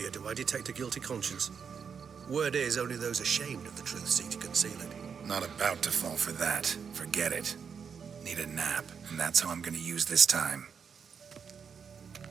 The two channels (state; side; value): quieter; left; 6.6 dB